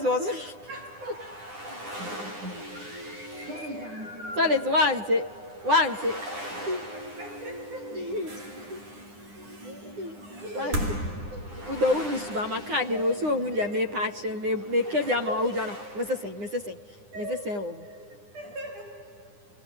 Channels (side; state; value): left; late; 9.9 ms